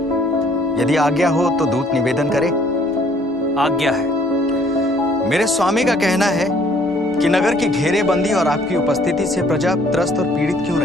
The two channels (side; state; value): both; normal; correlation 0.60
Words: यदि आज्ञा हो तो दूत निवेदन करे। आज्ञा है। मेरे स्वामी का कहना है कि नगर की घेरेबंदी और आपकी उपस्थिति से प्रजा त्रस्त और पीड़ित क्यों